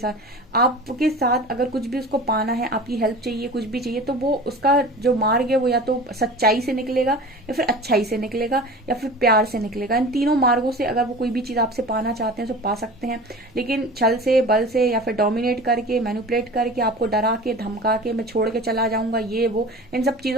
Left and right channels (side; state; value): both; normal; correlation 0.37